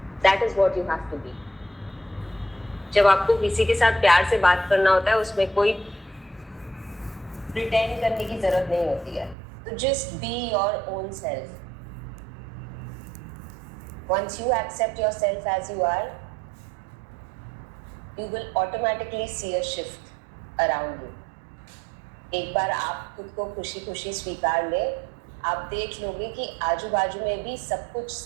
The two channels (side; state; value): left; drops out; at 9.3 s